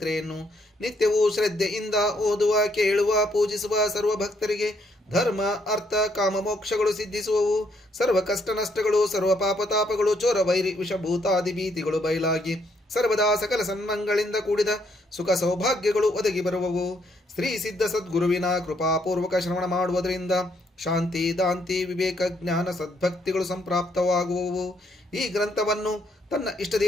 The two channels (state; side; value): normal; both; correlation 0.72